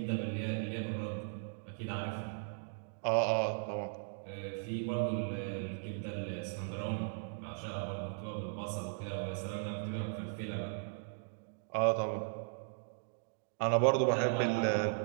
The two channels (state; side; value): silent; left; digital silence